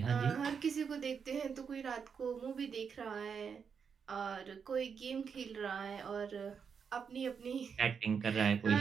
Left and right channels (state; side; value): quieter; left; 6.5 dB